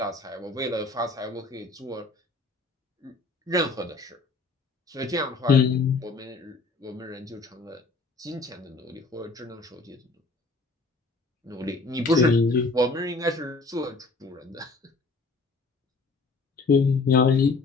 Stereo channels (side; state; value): right; quieter; 3.7 dB